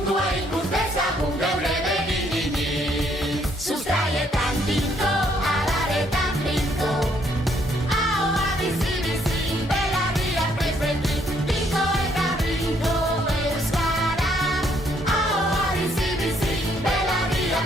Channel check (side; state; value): both; normal; correlation 0.69